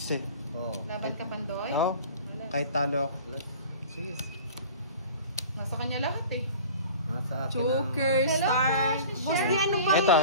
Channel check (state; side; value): inverted; both; correlation -0.42